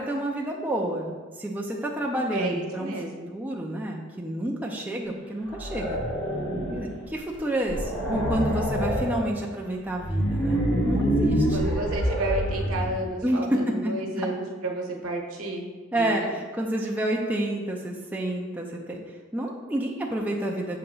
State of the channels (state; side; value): normal; both; correlation 0.64